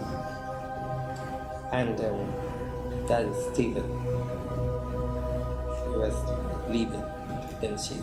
And that is Stephen. He was leaving, then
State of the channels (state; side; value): identical; both; correlation 1.00